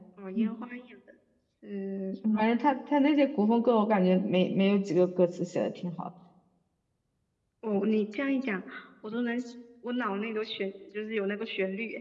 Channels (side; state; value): both; identical; correlation 1.00